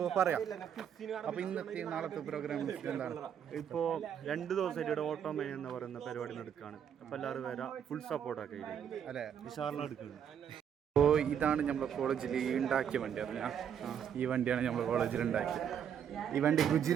പറയാം. അപ്പോൾ ഇന്നത്തെ നാളത്തെ പ്രോഗ്രാം എന്താണ്? ഇപ്പോൾ 2 ദിവസമായിട്ട് ഇവിടെ ഓട്ടോമാനി എന്ന് പറയുന്ന പരിപാടി നടക്കുകയാണ്. അപ്പോൾ എല്ലാവരും വരാം, ഫുൾ സപ്പോർട്ടൊക്കെ അല്ലേ, വിശാലം എടുക്കുന്നത്. അപ്പോൾ ഇതാണ് നമ്മുടെ കോളേജിൽ ഉണ്ടാക്കിയ വണ്ടി. അറിഞ്ഞാൽ ഈ വണ്ടിയാണ് നമ്മൾ കോളേജിൽ ഉണ്ടാക്കിയത്. ഈ വണ്ടി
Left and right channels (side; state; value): left; quieter; 8.5 dB